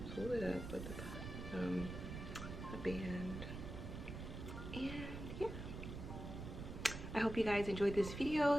pull it up with a band, and yeah. I hope you guys enjoyed this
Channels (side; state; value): right; noise; rumble, 7 dB below the sound